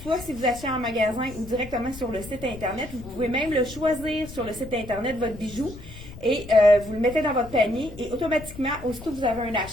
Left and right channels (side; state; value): left; noise; rumble, 15 dB below the sound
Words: Soit si vous achetez en magasin ou directement sur le site Internet. Vous pouvez même le choisir sur le site Internet, votre bijou. Et vous le mettez dans votre panier et automatiquement, aussitôt que vous avez un